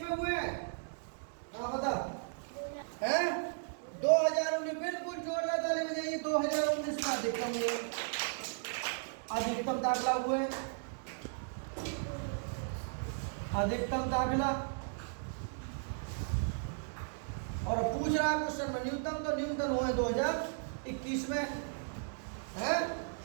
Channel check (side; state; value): left; silent; digital silence